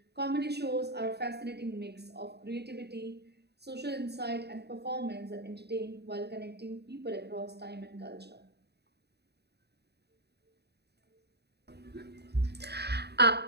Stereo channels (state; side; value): late; left; 0.48 ms